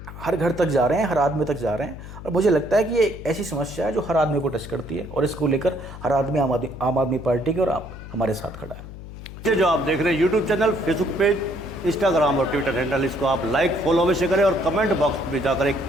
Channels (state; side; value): noise; left; hum, 13 dB below the sound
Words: हर घर तक जा रहे हैं, हर आदमी तक जा रहे हैं, और मुझे लगता है कि ये एक ऐसी समस्या है जो हर आदमी को टच करती है और इसको लेकर हर आदमी आम आदमी पार्टी के और हमारे साथ खड़ा है। ये जो आप देख रहे हैं YouTube channel, Facebook page, Instagram और ट्विटर हैंडल, इसको आप लाइक, फॉलो अवश्य करें और कमेंट बॉक्स में जाकर एक